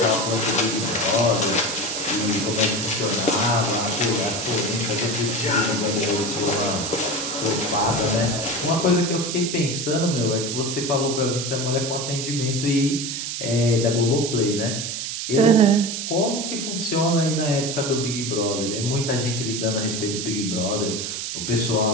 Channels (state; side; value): noise; right; hiss, 4 dB below the sound